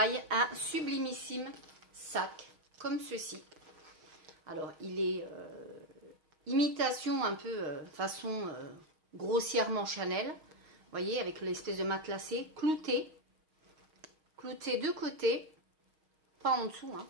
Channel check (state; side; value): late; left; 6.4 ms